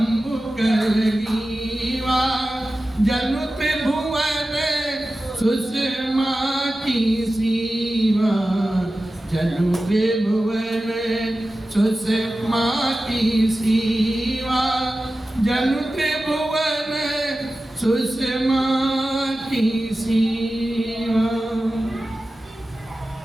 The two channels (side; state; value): both; normal; correlation 0.94